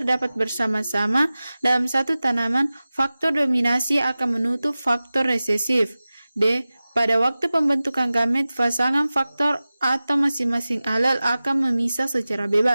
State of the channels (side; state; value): both; inverted; correlation -0.96